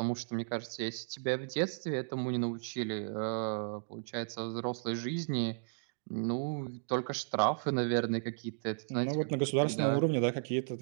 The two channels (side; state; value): left; silent; digital silence